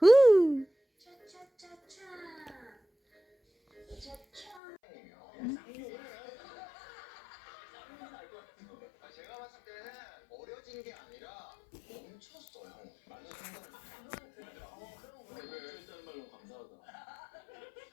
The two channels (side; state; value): right; drops out; at 4.6 s